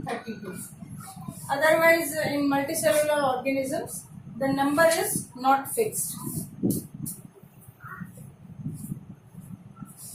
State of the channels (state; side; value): identical; both; correlation 1.00